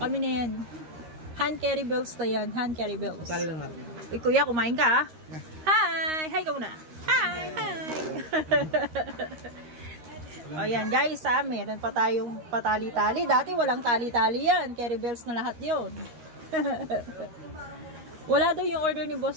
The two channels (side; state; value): left; late; 13 ms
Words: Kami na yan. Hand carry bells na yan. Hand carry bells. Tali lang natin. Uy, kuya, kumain ka, ha? Hi! Hi ka muna. Hi! O yan, guys, ha? Meron pa tayong patali-tali. Dati walang tali-tali yan. Carry bells na lahat yun. Wala daw yung order ni